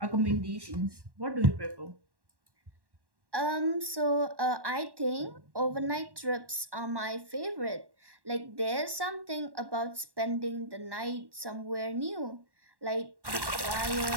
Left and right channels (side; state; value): left; late; 1.1 ms